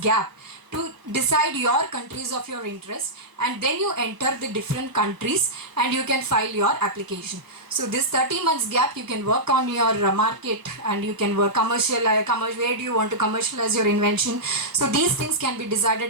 to decide your countries of your interest, and then you enter the different countries and you can file your application. So this 30 months gap, you can work on your market and you can work where do you want to commercialize your invention. So these things can be decided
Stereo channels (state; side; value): late; left; 1.1 ms